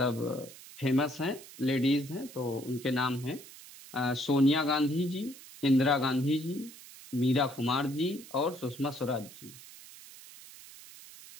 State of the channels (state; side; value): noise; right; hiss, 18 dB below the sound